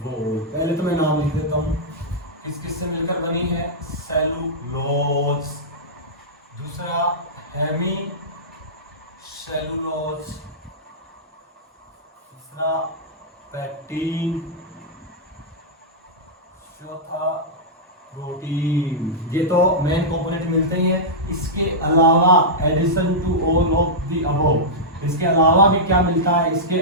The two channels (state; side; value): normal; both; correlation -0.11